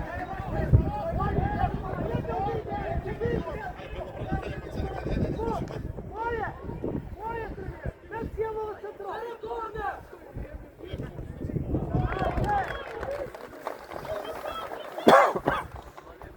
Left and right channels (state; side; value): identical; both; correlation 1.00